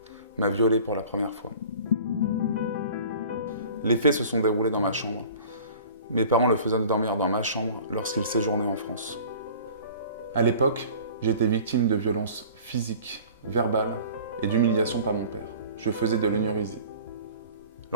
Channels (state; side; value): inverted; both; correlation -0.45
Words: m'a violé pour la première fois. Les faits se sont déroulés dans ma chambre. Mes parents le faisaient dormir dans ma chambre lorsqu'il séjournait en France. À l'époque, j'étais victime de violences physiques, verbales et d'humiliation par mon père. Je faisais de l'énurésie.